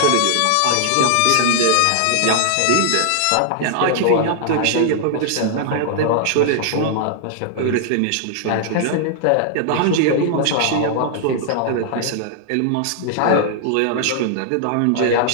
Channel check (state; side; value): different; both; correlation -0.01